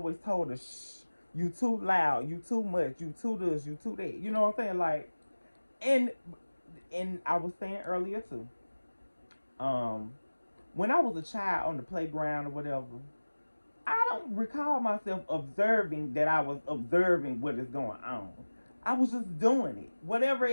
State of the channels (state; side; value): inverted; both; correlation -1.00